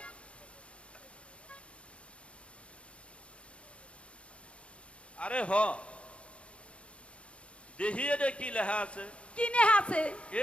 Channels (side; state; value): right; late; 0.060 ms